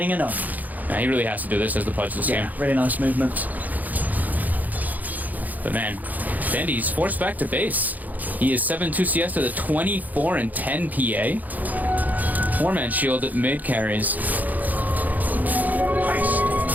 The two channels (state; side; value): late; left; 0.081 ms